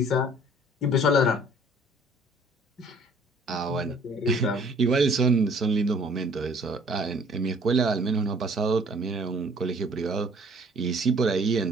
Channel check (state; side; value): normal; both; correlation 0.55